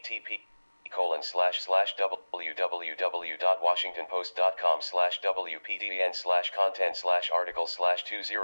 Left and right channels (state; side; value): inverted; both; correlation -1.00